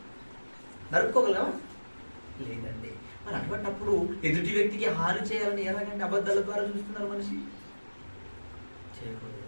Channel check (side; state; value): both; inverted; correlation -1.00